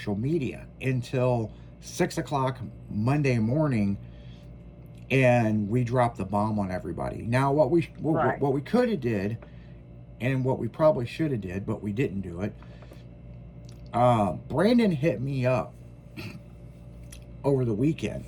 media until 6 o'clock Monday morning. And we dropped the bomb on everybody. Now, what we could have did, and what we probably should have did, but we didn't do it. Brandon hit me up over the weekend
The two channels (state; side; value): identical; both; correlation 1.00